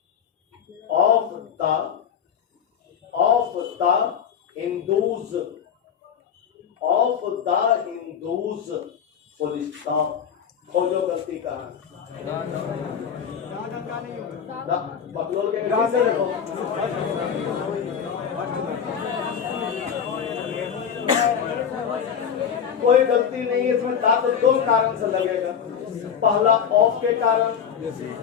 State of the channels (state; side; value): quieter; right; 7.7 dB